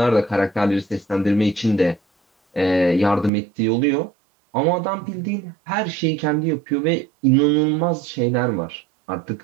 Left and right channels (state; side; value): drops out; left; at 3.3 s